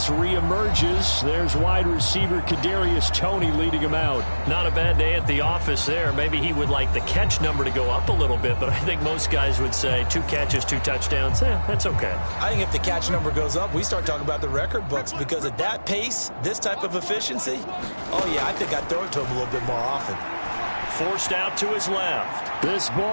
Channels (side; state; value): both; inverted; correlation -1.00